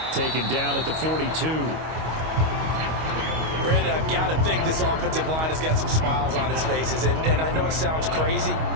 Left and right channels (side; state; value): left; late; 25 ms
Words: Taken down at the 42. Brandon, I've got to think this offensive line has got some smiles on its faces. And I know it sounds crazy,